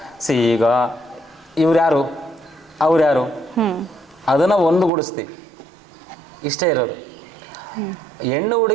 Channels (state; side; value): drops out; left; at 4.9 s